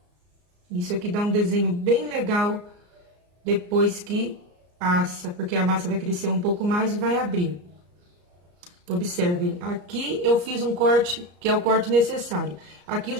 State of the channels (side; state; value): left; late; 34 ms